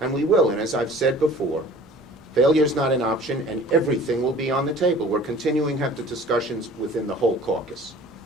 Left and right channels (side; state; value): right; noise; hum, 29 dB below the sound